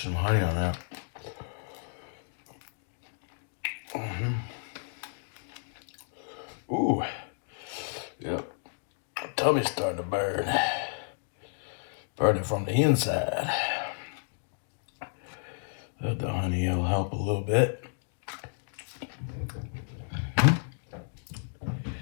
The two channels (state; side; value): silent; right; digital silence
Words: some honey on that. Ooh. Yep. My tummy's starting to burn. Burning from the inside. The honey will help a little bit.